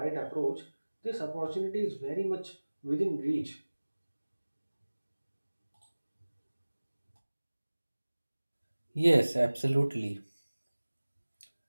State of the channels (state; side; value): inverted; both; correlation -1.00